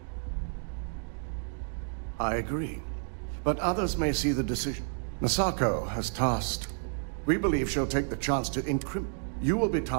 I agree. But others may see the decision. Masako has tasked. We believe she'll take the chance to incriminate. You will be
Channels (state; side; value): silent; left; digital silence